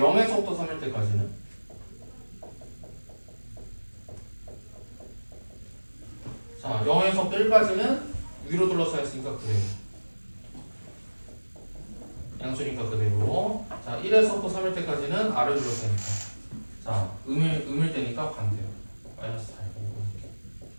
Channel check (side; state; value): both; inverted; correlation -1.00